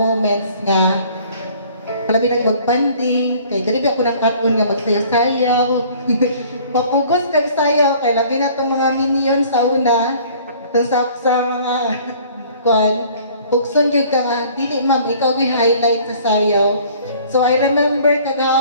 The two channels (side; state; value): both; inverted; correlation -0.53